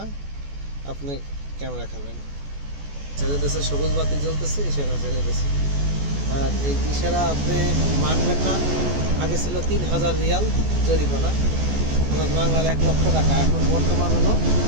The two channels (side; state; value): left; late; 14 ms